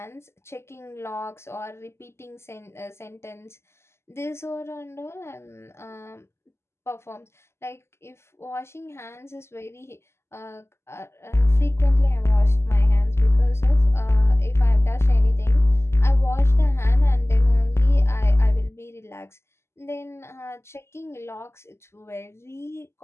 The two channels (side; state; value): right; late; 0.13 ms